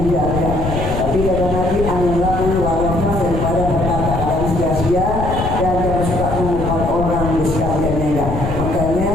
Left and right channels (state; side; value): noise; left; rumble, 4 dB below the sound